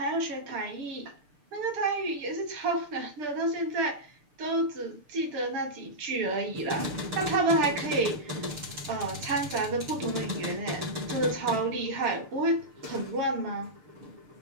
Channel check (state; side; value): late; left; 6.8 ms